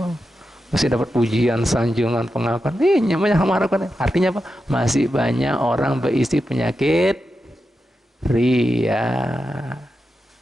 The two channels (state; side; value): normal; both; correlation 0.89